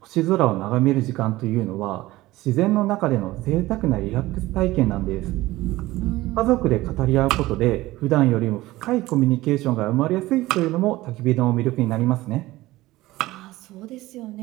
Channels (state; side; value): quieter; left; 17.9 dB